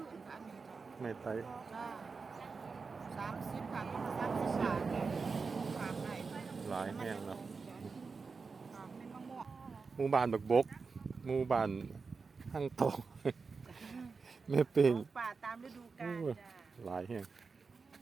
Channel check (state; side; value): quieter; left; 4.7 dB